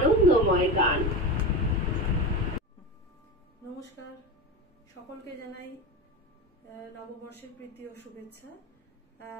গান। নমস্কার, সকলকে জানাই নববর্ষের প্রীতি ও শুভেচ্ছা।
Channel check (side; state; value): both; normal; correlation 0.23